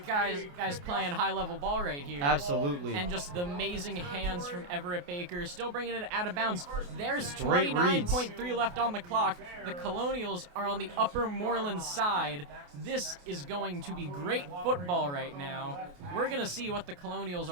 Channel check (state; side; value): late; left; 28 ms